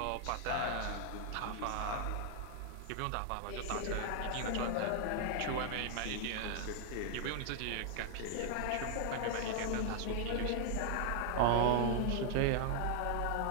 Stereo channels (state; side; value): different; both; correlation 0.00